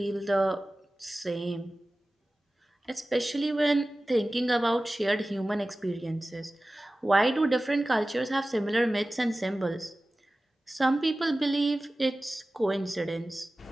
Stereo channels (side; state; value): both; normal; correlation 0.96